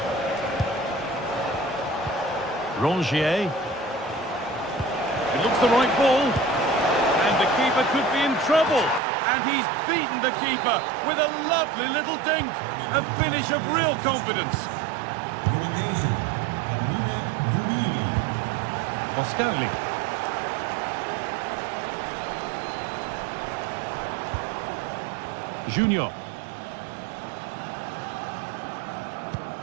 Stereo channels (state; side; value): drops out; left; at 9.0 s